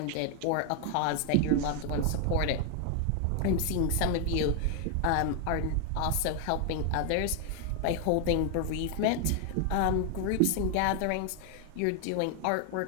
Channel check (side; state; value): both; different; correlation 0.00